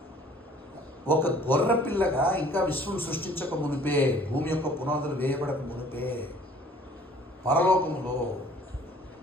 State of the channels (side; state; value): both; normal; correlation 0.54